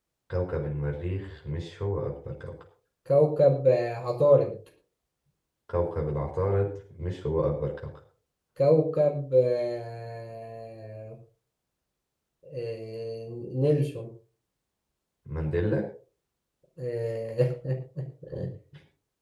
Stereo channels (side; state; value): both; identical; correlation 1.00